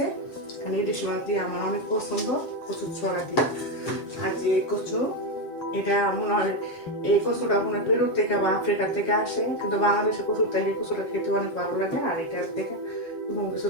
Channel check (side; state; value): right; late; 7.6 ms